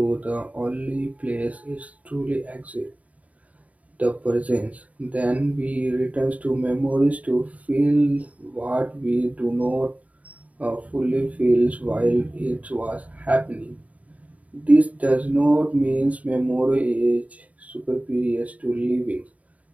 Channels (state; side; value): late; left; 0.070 ms